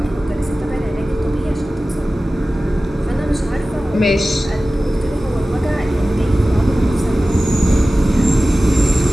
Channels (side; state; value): both; normal; correlation 0.96